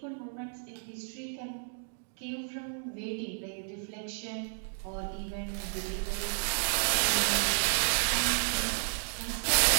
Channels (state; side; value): silent; left; digital silence